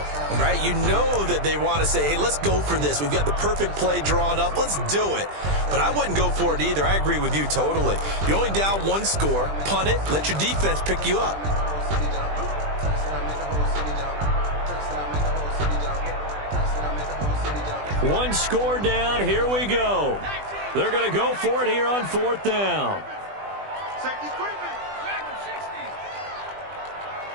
right? You know that they want to say, hey, let's go for this. We've got the perfect play drawn up. Let's do it. But I wouldn't go for it either. I agree with you totally. You're only down 1 score. Punt it. Let your defense pick you up. One score down. Here we go. They're going to go for it here on 4th down.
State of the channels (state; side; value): late; left; 20 ms